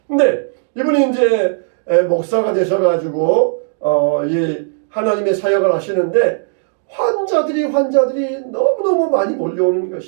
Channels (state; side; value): silent; left; digital silence